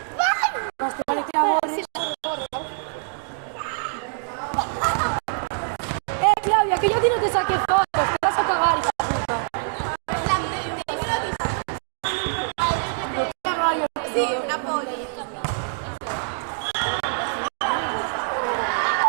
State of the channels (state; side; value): silent; left; digital silence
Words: Más te vale que la borres. te saqué fotos, te vas a cagar, hija de puta. No te cagas, yo. Sí, una polla.